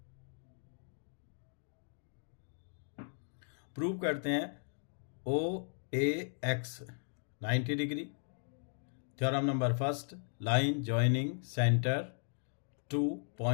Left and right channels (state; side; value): silent; right; digital silence